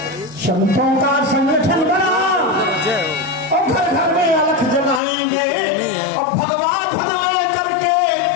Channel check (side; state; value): right; drops out; at 5.0 s